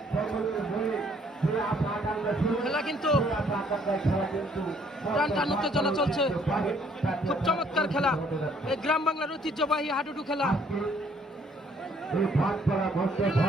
খেলা কিন্তু টান টান উত্তেজনা চলছে। খুব চমৎকার খেলা, এই গ্রাম বাংলার ঐতিহ্যবাহী হাডুডু খেলা।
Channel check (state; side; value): normal; both; correlation 0.63